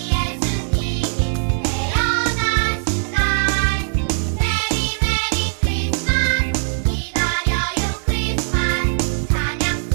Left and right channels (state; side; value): silent; left; 58 dB below the other